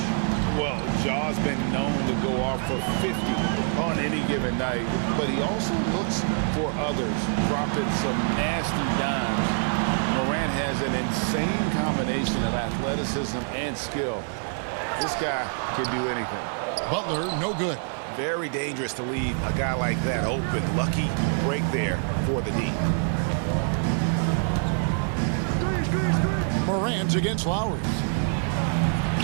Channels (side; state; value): left; silent; 61 dB below the other